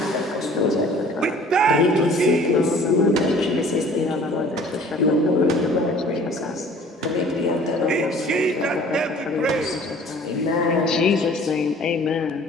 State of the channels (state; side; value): normal; both; correlation 0.50